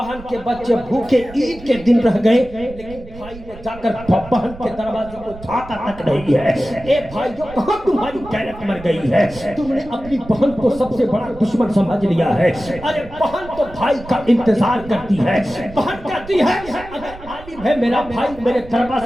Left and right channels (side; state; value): right; noise; rumble, 17 dB below the sound